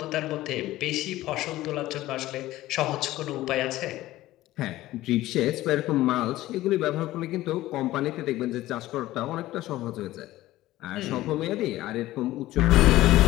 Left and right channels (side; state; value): right; quieter; 16.1 dB